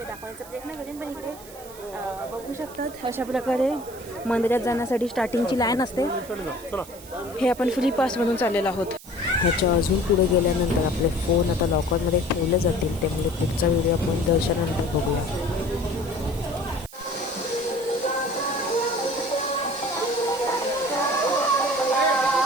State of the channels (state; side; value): noise; right; hiss, 18 dB below the sound